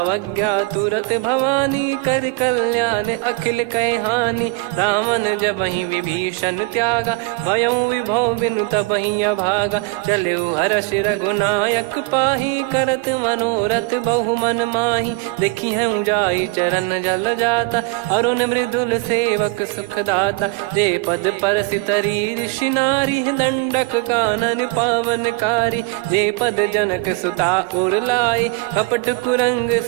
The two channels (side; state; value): left; quieter; 23.8 dB